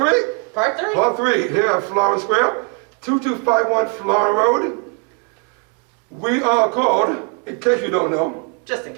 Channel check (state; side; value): quieter; left; 35.6 dB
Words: Part 3. Part 3 here at Florin Square, 2251 Florin Road. We are called, in case you don't know, Just in